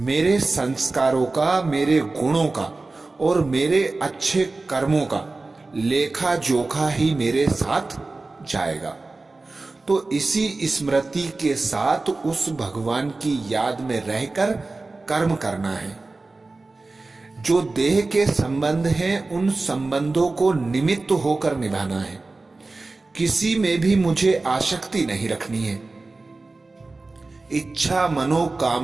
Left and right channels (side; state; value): left; quieter; 3.4 dB